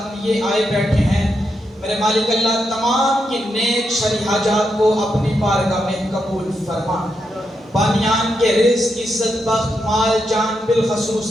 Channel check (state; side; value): normal; both; correlation 0.83